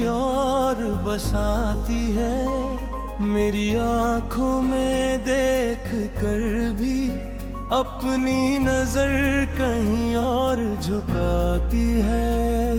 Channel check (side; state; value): both; identical; correlation 1.00